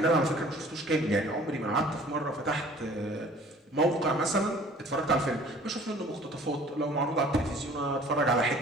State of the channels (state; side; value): normal; both; correlation 0.51